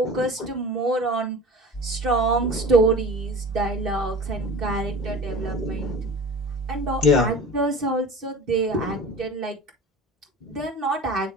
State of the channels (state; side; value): normal; both; correlation 0.37